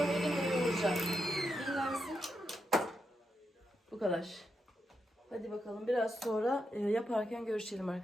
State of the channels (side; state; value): both; normal; correlation 0.84